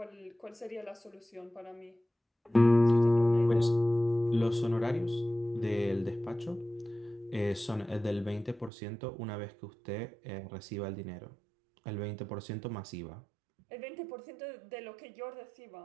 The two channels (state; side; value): drops out; left; at 8.7 s